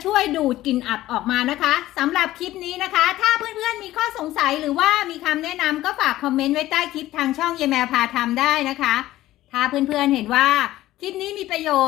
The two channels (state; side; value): quieter; right; 15.3 dB